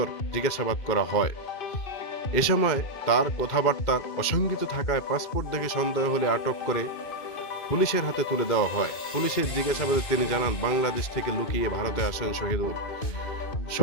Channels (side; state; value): right; late; 2.5 ms